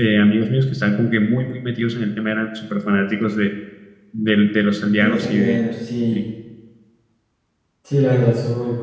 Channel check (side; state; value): both; identical; correlation 1.00